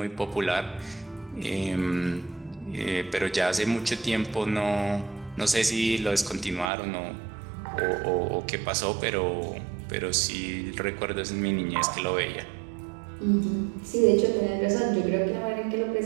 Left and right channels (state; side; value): drops out; left; at 6.7 s